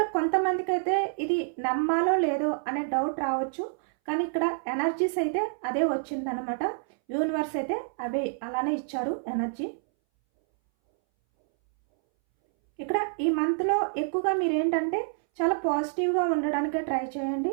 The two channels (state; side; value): silent; left; 60 dB below the other